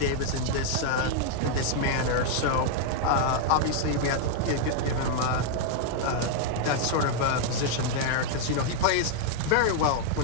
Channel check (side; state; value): both; different; correlation -0.01